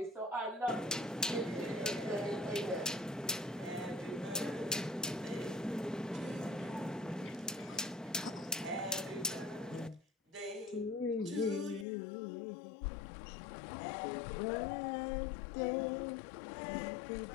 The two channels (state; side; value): drops out; right; at 11.9 s